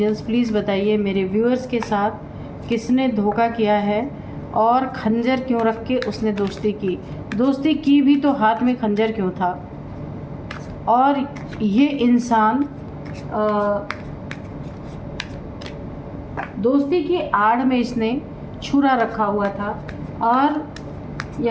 please बताइए मेरे व्यूअर्स के साथ किसने धोखा किया है और खंजर क्यों रख के उसने दोस्ती की भी तो हाथ में खंजर क्यों था। और ये इंसान दोस्ती की आड़ में इसने छुरा रखा हुआ था, और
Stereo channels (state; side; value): identical; both; correlation 1.00